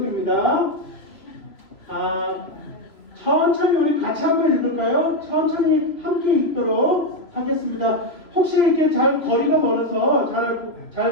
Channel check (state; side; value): late; right; 3.0 ms